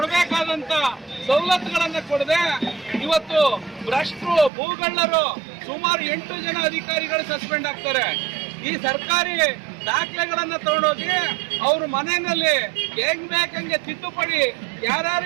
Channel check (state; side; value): drops out; left; at 4.5 s